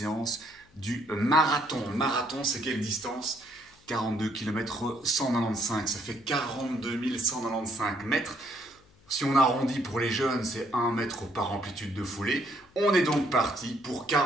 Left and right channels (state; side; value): noise; left; hum, 29 dB below the sound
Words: du marathon. Marathon, c'est quelle distance? 42 km 195, ça fait 42 195 mètres. Si on arrondit pour les jeunes, c'est 1 mètre par amplitude de foulée. On est donc parti pour